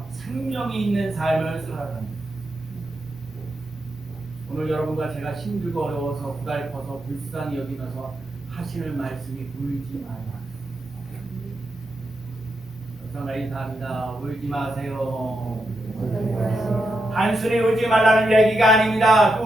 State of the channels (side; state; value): both; normal; correlation 0.85